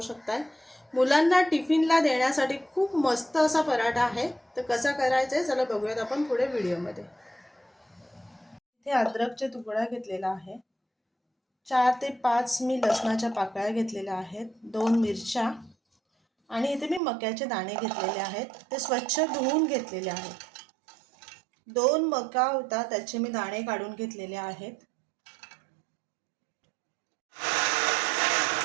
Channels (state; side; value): drops out; left; at 17.0 s